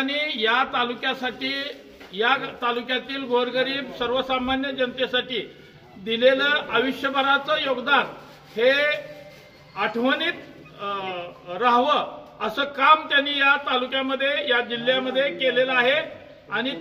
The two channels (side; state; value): both; identical; correlation 1.00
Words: या तालुक्यासाठी, या तालुक्यातील गोरगरीब सर्वसामान्य जनतेसाठी दिलेलं आयुष्यभराचं योगदान हे आठवणीत राहावं असं काम त्यांनी या तालुक्यामध्ये, या जिल्ह्यामध्ये केलेलं आहे आणि